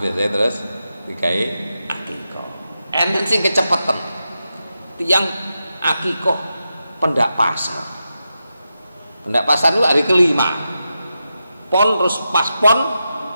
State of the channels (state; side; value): inverted; both; correlation -0.89